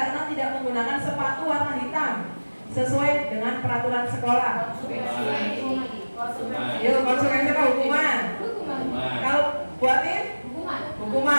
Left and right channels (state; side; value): inverted; both; correlation -1.00